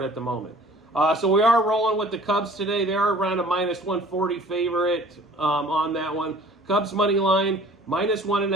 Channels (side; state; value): both; normal; correlation 0.50